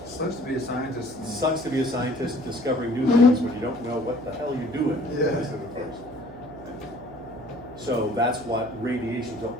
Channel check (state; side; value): noise; right; hum, 16 dB below the sound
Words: Sucks to be a scientist. Sucks to be a scientist discovering new things when you don't know what the hell you're doing. Yeah. Most of the first. So that's what radiation, so